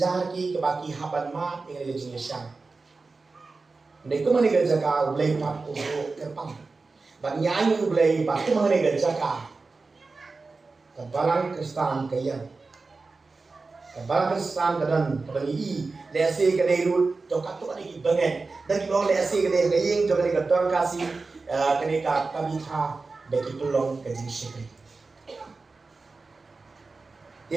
ki ka ki haban ma tinggal ke jingyasang. Ndai ko mani ga jaka ulai pat ko kerpang. Bang nyanyi ulai pat ko mani ga jaka. Kabalang kristan kayang. Kabalang kristan kadan kabangi lese ka dai ru to ka to ni bangen. Dan ki bang lese ka dai kaying to ka tor kasi kani ka kabitha beki tulong ka jing shikri.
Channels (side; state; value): left; quieter; 3.9 dB